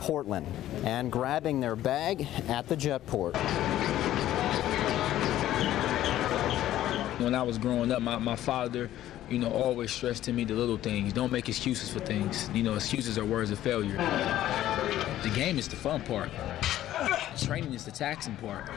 and grabbing their bag at the jetport. When I was growing up, my father, always stressed to me the little things. Don't make excuses for things. Excuses are words of failure. The game is the fun part. Training is the taxing part.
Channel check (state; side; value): quieter; right; 13.3 dB